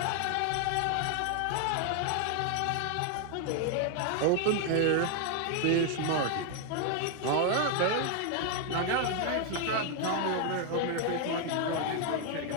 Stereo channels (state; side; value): different; both; correlation 0.00